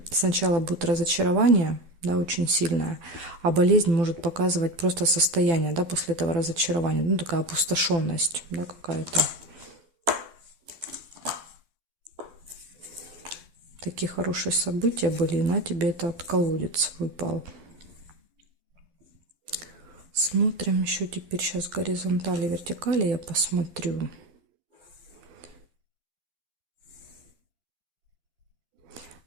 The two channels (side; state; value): left; late; 12 ms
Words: сначала будет разочарование, да, очень сильное, а болезнь может показывать просто состояние, да, после этого разочарования, ну, такая опустошенность, да, какая-то. Такие хорошие события были, и на тебе этот колодец выпал. Смотрим еще теперь сейчас горизонтали, вертикали я посмотрю.